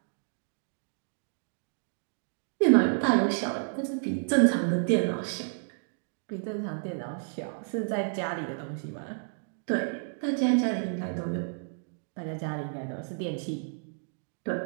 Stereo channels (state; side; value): silent; left; digital silence